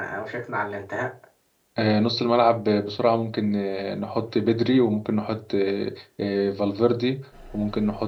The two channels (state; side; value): identical; both; correlation 1.00